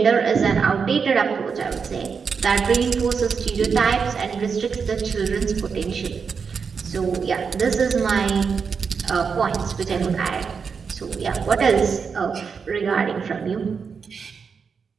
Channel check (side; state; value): left; quieter; 5.8 dB